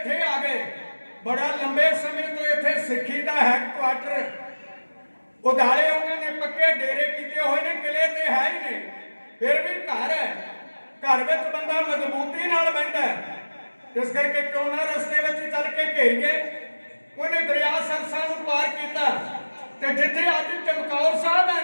ਆ ਗਏ, ਬੜਾ ਲੰਬੇ ਸਮੇਂ ਤੋਂ ਇੱਥੇ ਸਿੱਖੀ ਦਾ ਹੈਡਕੁਆਟਰ ਉਦਾਲੇ ਉਹਨਾਂ ਨੇ ਪੱਕੇ ਡੇਰੇ ਕੀਤੇ ਹੋਏ ਨੇ, ਕਿਲੇ ਤੇ ਹੈ ਹੀ ਨੇ, ਫਿਰ ਵੀ ਘਰ ਹੈ। ਘਰ ਵਿੱਚ ਬੰਦਾ ਮਜ਼ਬੂਤੀ ਨਾਲ ਬੈਠਾ ਹੈ। ਇਸ ਕਰਕੇ ਕਿਉਂ ਨਾ ਰਸਤੇ ਵਿੱਚ ਚੱਲ ਕੇ ਘੇਰੀਏ। ਉਹਨੇ ਦਰਿਆ ਸਰਸਾ ਨੂੰ ਪਾਰ ਕੀਤਾ ਤੇ ਜਿੱਥੇ ਅੱਜ ਚਮਕੌਰ ਸਾਹਿਬ ਹੈ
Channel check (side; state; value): both; inverted; correlation -1.00